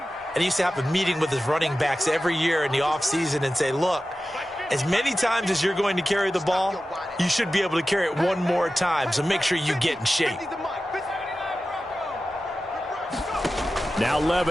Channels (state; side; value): normal; both; correlation 0.94